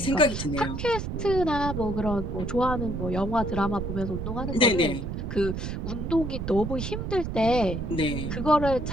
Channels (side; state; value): right; noise; rumble, 4 dB below the sound